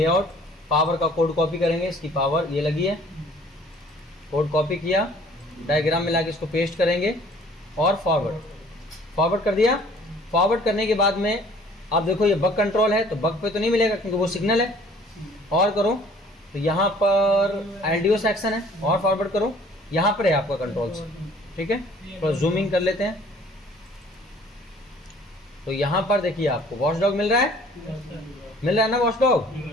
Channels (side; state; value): both; normal; correlation 0.54